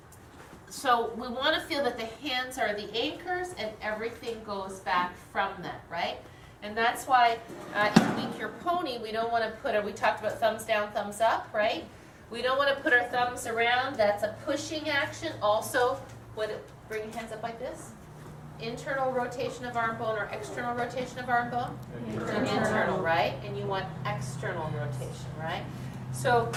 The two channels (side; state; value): both; identical; correlation 1.00